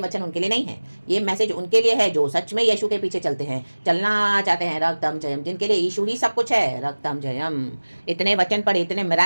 उनके लिए नहीं है। ये मैसेज उनके लिए है जो सच में यीशु के पीछे चलते हैं, चलना चाहते हैं। रक्तम जयम, जिनके लिए यीशु ही सब कुछ है। रक्तम जयम। इतने वचन पढ़े, इतने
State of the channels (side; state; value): both; inverted; correlation -1.00